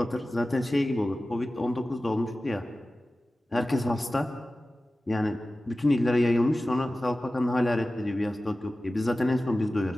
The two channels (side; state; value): both; normal; correlation 0.96